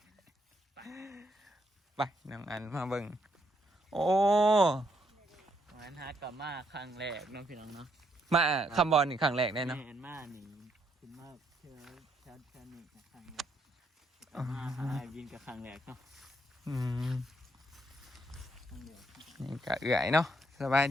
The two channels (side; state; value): both; normal; correlation 0.74